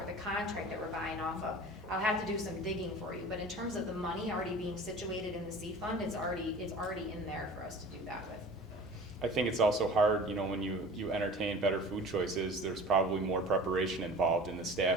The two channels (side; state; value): both; normal; correlation 0.41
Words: the contract that we're buying off of? I'll have to do some digging for you, but in terms of the money already being situated in the C fund, it's already in there for us to do that with. I think it's also hard, when you entertain better food choices, there's probably more preparation involved, and the